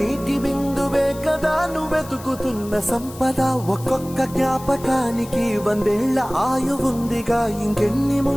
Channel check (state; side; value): noise; left; hiss, 18 dB below the sound